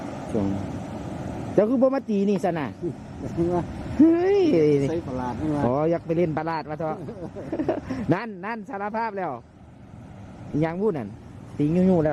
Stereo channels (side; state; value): both; identical; correlation 1.00